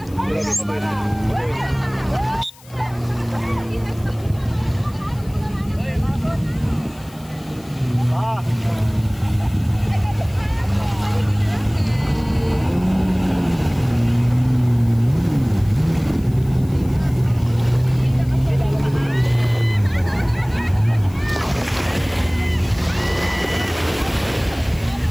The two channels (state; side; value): noise; left; hiss, 25 dB below the sound